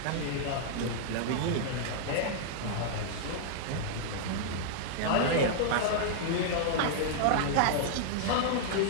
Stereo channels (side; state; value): both; different; correlation -0.01